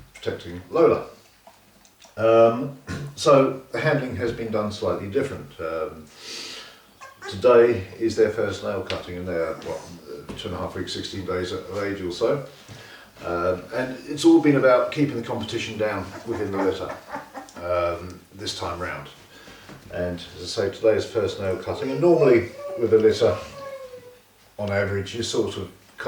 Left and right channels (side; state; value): both; identical; correlation 1.00